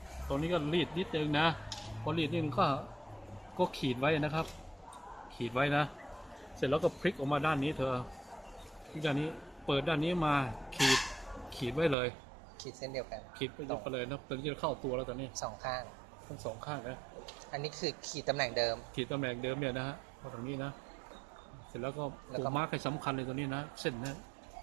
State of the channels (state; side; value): drops out; left; at 12.0 s